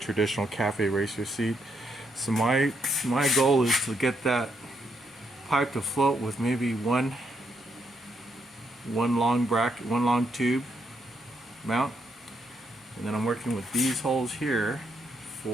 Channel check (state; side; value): normal; both; correlation 0.77